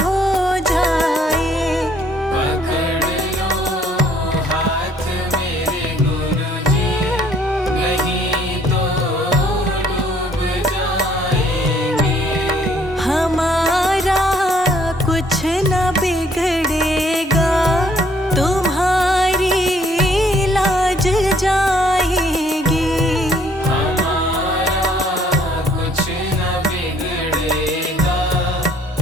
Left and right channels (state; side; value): normal; both; correlation 0.63